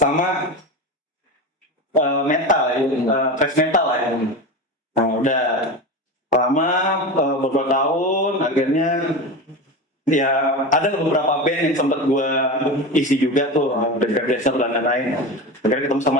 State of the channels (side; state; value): both; normal; correlation 0.24